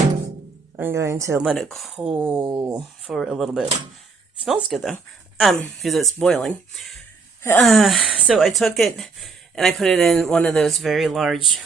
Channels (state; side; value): quieter; left; 4.6 dB